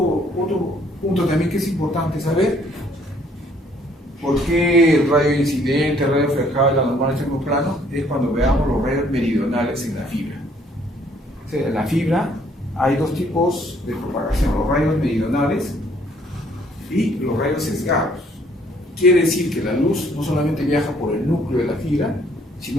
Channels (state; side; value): normal; both; correlation 0.63